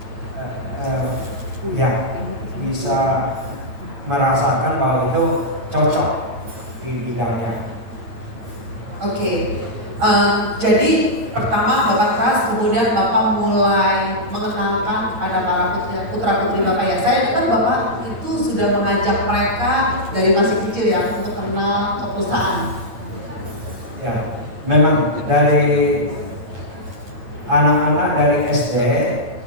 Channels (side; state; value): left; late; 9.1 ms